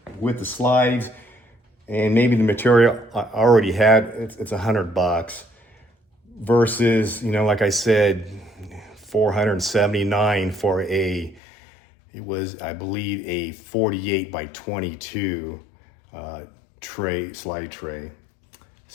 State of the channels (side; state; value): right; drops out; at 11.4 s